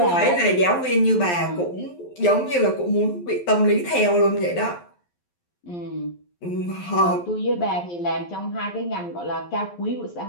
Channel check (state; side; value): late; right; 11 ms